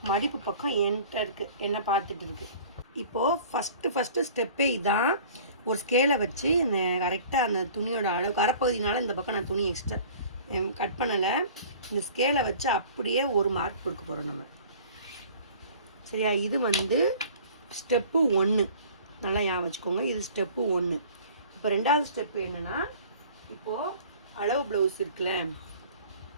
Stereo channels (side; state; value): both; inverted; correlation -0.47